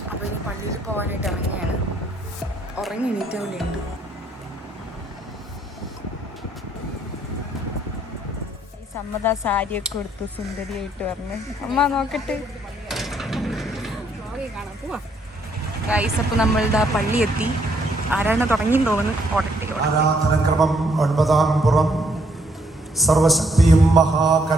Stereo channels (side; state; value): both; normal; correlation 0.70